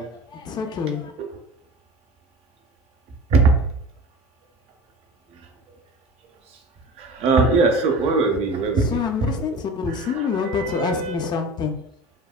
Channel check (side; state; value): both; normal; correlation 0.37